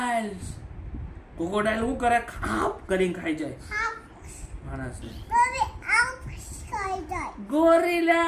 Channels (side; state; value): both; identical; correlation 1.00